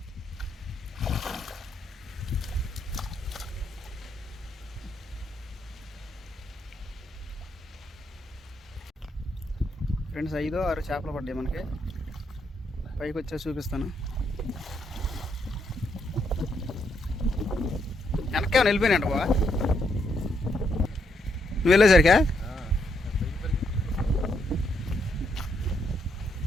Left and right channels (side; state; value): both; normal; correlation 0.76